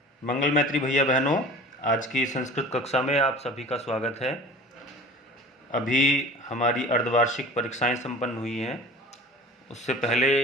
मंगल मैत्री भैया बहनों, आज की संस्कृत कक्षा में आप सभी का स्वागत है। अभी हमारी अर्धवार्षिक परीक्षाएं संपन्न हुई हैं। उससे पहले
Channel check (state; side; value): normal; both; correlation 0.42